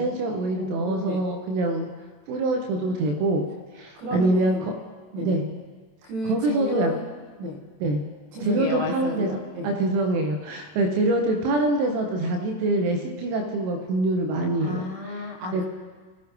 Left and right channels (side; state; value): left; late; 27 ms